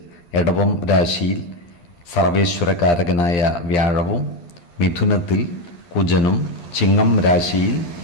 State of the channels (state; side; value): late; right; 12 ms